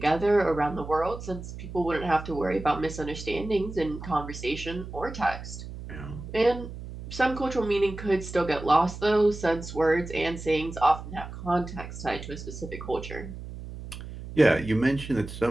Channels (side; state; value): right; noise; hum, 11 dB below the sound